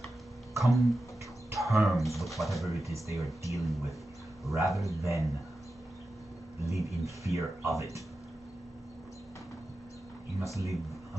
come to terms with whatever it is they are dealing with, rather than live in fear of it. You must live,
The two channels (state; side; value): normal; both; correlation 0.92